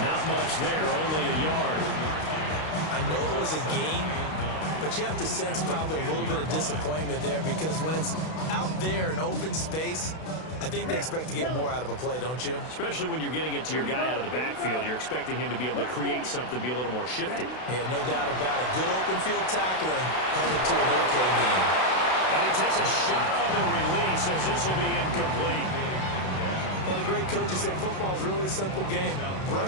Not much there, only a yard. I know it was a gain, but you have to sense probably a little bit of disappointment there because when it's out there in open space, I think they expect to get more out of a play, don't you? Especially when you're getting it to your guy out of the backfield. You're expecting him to be able to create something, be a little more shifty. Yeah, no doubt about it. Good open field tackling, held it to an okay game. And he takes a shot on the release as this will be incomplete. Well, the great coach has said football is really a simple game.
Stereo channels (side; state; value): right; late; 32 ms